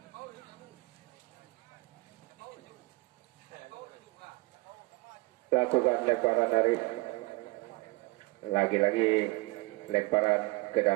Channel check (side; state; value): left; quieter; 24.9 dB